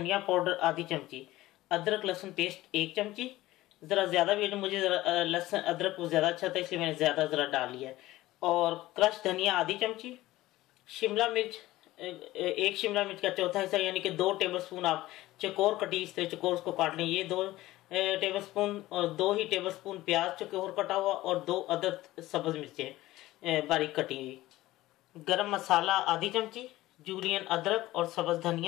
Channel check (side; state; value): right; quieter; 16.9 dB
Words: पाउडर आधी चमची, अदरक लहसुन पेस्ट 1 चमची। ज़रा ज़्यादा भी मुझे ज़रा लहसुन अदरक को ज़्यादा अच्छा था, इसलिए मैंने ज़्यादा ज़रा डाल लिया है। और क्रश धनिया आधी चमची, शिमला मिर्च 1 शिमला मिर्च का चौथा हिस्सा यानी कि 2 टेबलस्पून आप चकोर कटी इस तरह चकोर उसको काट लें, ये 2 टेबलस्पून, और 2 ही टेबलस्पून प्याज चकोर कटा हुआ और 2 अदद सब्ज मिर्चें बारीक कटी हुई। गरम मसाला आधी चमची, जूलियन अदरक और सब्ज